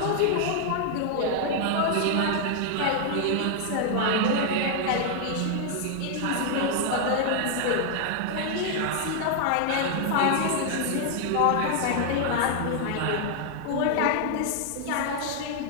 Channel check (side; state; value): both; different; correlation 0.00